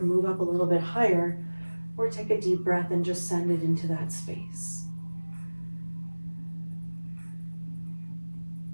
move up a little bit higher, or take a deep breath and just send it into that space.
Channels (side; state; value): both; inverted; correlation -1.00